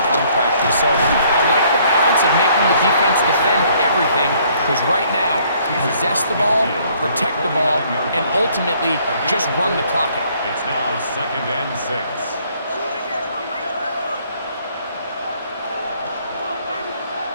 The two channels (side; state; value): both; inverted; correlation -0.63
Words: practice. So I like the balance of making the defense defend everything, because right now, possess the ball, protect the ball, and ultimately just run the clock out. It's now 2nd and 6.